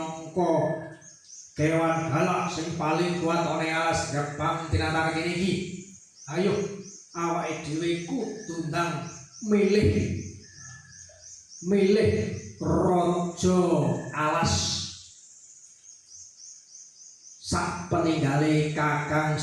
kewan galak sing paling kuat ana alas gerbang tinatar kene iki. Ayo, awake dhewe kudu ndang milih raja alas sak peninggale Kakang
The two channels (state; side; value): identical; both; correlation 1.00